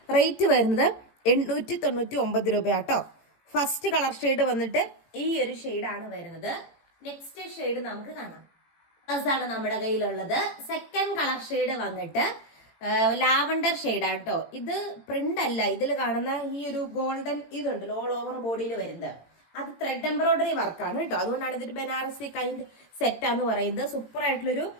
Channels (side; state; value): right; late; 18 ms